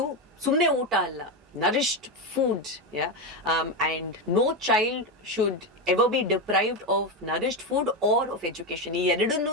ಸುಮ್ಮನೆ ಊಟ ಅಲ್ಲ, nourished food, yeah, and no child should ever be deprived of nourished food or of education. ಈ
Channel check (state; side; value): normal; both; correlation 0.13